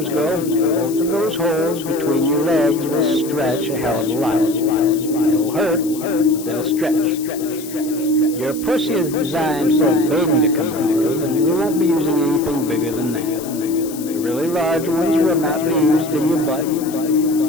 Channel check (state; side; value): noise; left; hiss, 14 dB below the sound